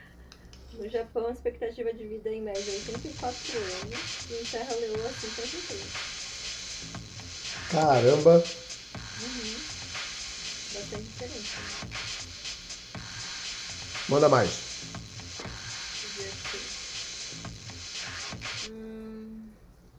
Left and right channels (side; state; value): both; identical; correlation 1.00